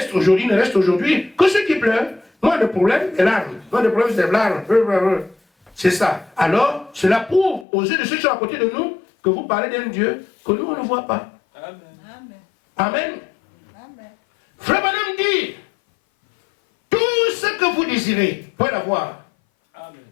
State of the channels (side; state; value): right; drops out; at 7.7 s